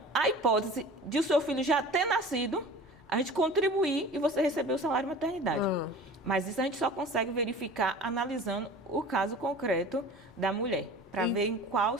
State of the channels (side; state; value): both; normal; correlation 0.40